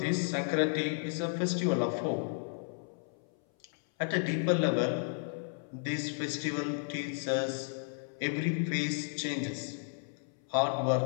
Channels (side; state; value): right; silent; 56 dB below the other